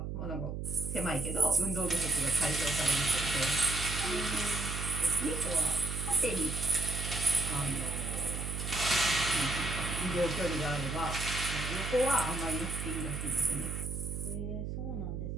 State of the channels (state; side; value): noise; right; hum, 5 dB below the sound